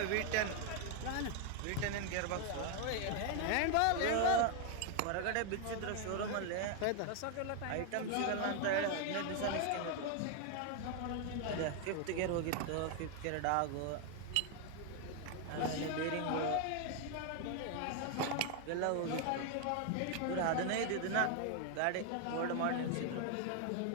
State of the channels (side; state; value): both; different; correlation 0.00